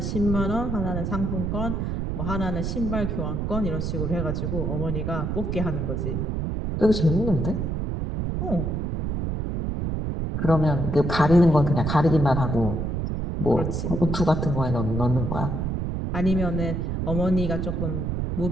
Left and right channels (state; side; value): noise; right; rumble, 1 dB below the sound